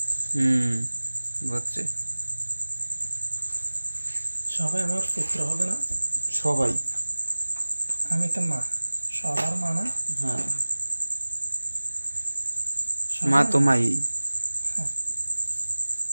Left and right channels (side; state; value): both; inverted; correlation -1.00